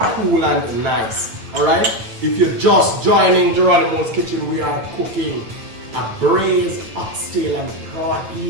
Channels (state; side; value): late; left; 9.3 ms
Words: and nice. Alright? If you're just joining Jeronimos kitchen, we are cooking a braised oxtail and